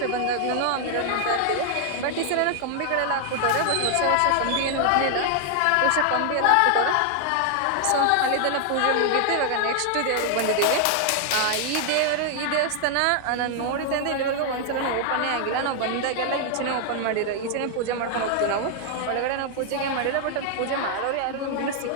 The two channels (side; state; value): both; different; correlation 0.00